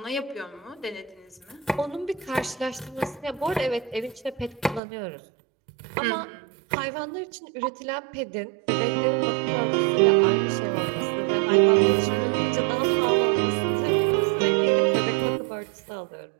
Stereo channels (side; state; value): left; drops out; at 4.8 s